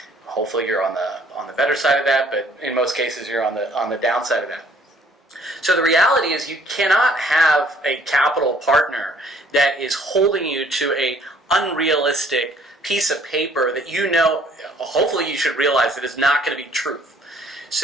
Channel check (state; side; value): normal; both; correlation 0.59